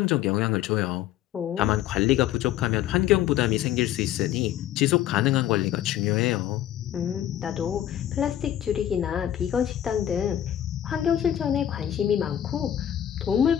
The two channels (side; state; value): right; quieter; 11.6 dB